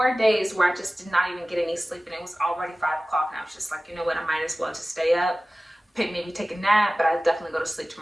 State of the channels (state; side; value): normal; both; correlation 0.97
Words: days where I just did not even get any sleep, and it was already 5 o'clock, and I was just like, you know what, I might as well just stay up, maybe take a nap, but I'll definitely go to sleep